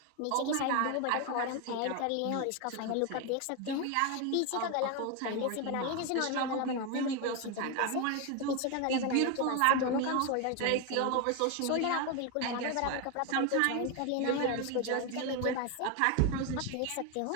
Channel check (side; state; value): both; different; correlation 0.01